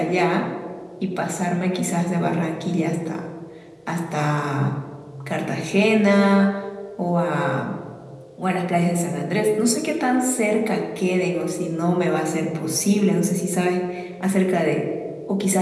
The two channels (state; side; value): identical; both; correlation 1.00